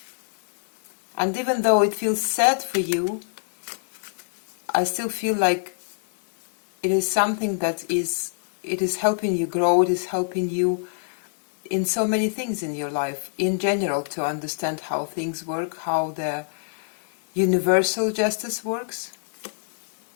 And even though it feels sad for you, I still feel like it is something that is helping you grow, it is helping you in so many things in your life, in general, to understand how things work, how the universal justice works.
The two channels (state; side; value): silent; right; digital silence